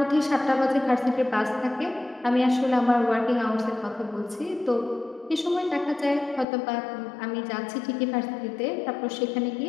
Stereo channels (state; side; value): drops out; right; at 6.5 s